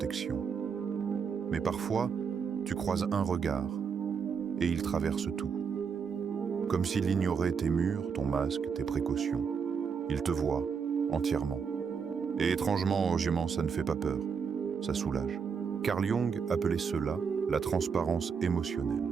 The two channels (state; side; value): quieter; left; 6.2 dB